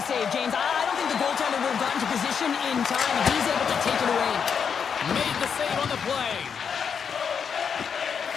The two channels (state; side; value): quieter; right; 6.8 dB